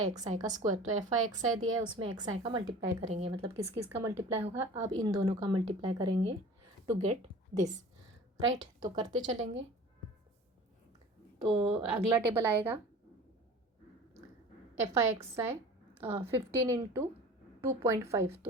XI का स्क्वायर। तो FI XI दिया है, उसमें XI का मल्टीप्लाई करेंगे, मतलब किस किस का मल्टीप्लाई होगा, अब इन दोनों का मल्टीप्लाई करेंगे टू गेट दिस। राइट, तो करते चलेंगे। तो अगला टेबल आएगा FI XI 15 इंटू 2.5,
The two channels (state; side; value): normal; both; correlation 0.41